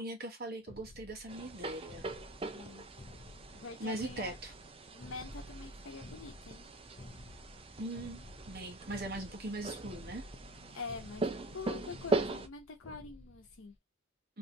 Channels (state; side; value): normal; both; correlation 0.36